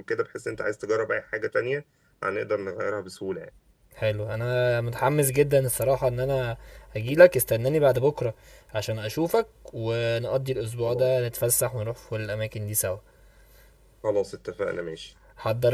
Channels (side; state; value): both; identical; correlation 1.00